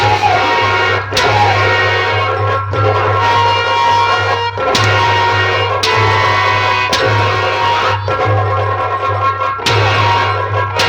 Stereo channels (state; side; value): identical; both; correlation 1.00